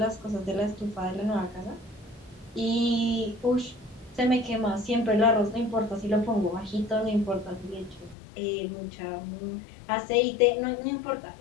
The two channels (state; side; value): drops out; right; at 8.2 s